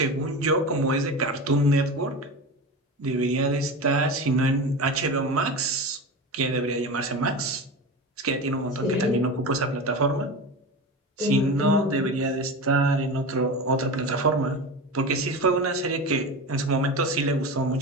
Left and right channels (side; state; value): both; normal; correlation 0.26